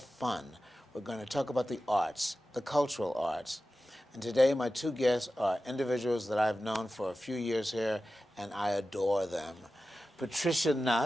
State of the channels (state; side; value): normal; both; correlation 0.94